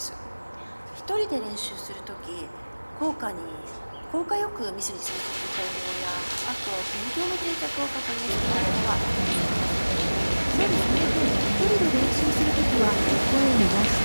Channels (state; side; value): inverted; both; correlation -1.00